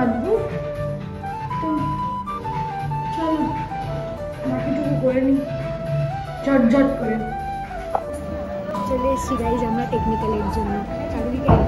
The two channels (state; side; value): identical; both; correlation 1.00